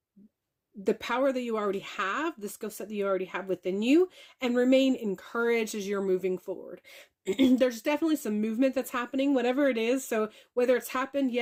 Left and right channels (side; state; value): both; identical; correlation 1.00